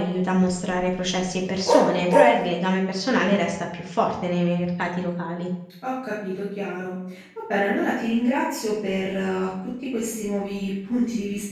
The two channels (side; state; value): both; identical; correlation 1.00